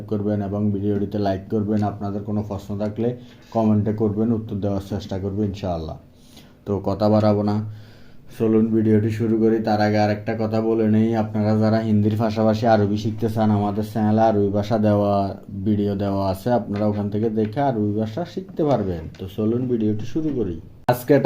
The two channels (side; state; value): both; identical; correlation 1.00